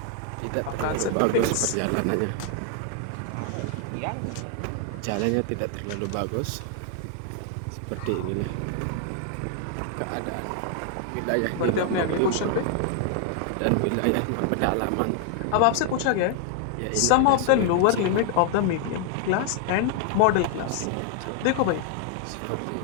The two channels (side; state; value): both; different; correlation 0.00